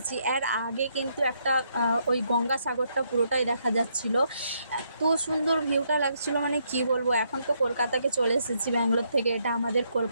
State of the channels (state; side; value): inverted; both; correlation -0.75